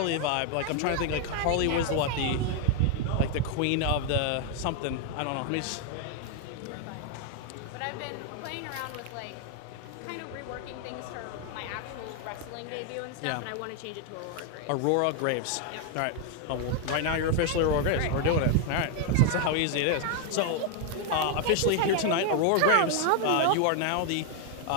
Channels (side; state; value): both; different; correlation 0.00